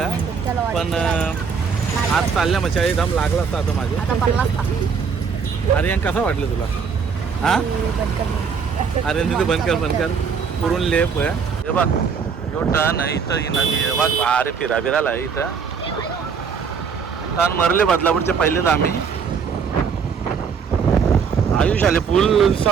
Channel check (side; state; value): left; quieter; 6.1 dB